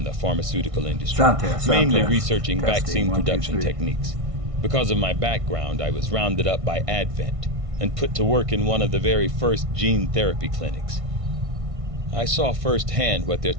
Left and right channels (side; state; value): left; late; 1.6 ms